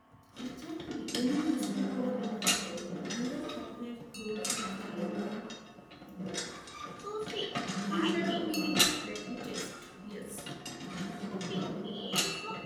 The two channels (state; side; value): identical; both; correlation 1.00